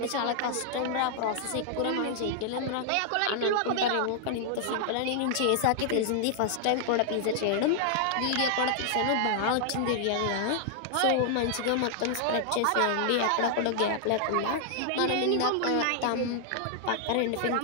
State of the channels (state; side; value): different; both; correlation -0.01